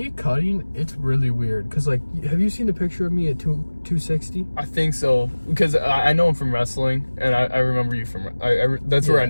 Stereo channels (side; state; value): both; inverted; correlation -1.00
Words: cutting, it's really weird. Cause like, have you seen the picture of me at 260? I think so. Because I know him from wrestling, and I remember you from. That's where I